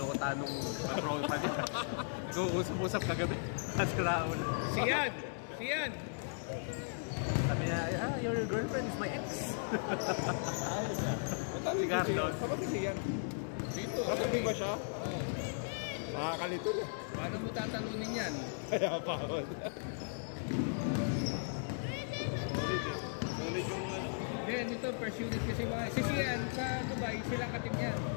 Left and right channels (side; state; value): right; silent; digital silence